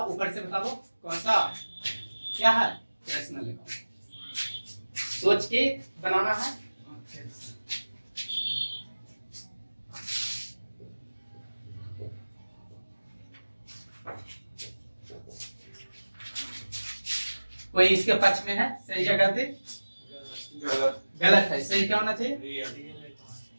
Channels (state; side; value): inverted; both; correlation -1.00